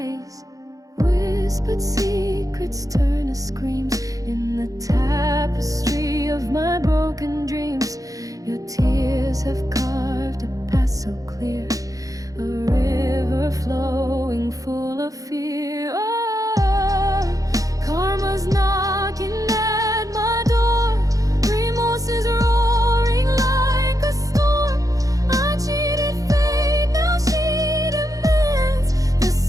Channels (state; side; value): late; left; 0.17 ms